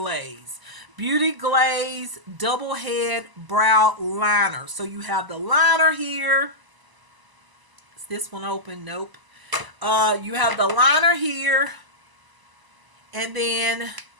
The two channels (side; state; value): left; late; 1.0 ms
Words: Beauty Glaze Double Head Brow Liner. So you have the liner here. Is this one open? Nope. You have the liner here. And then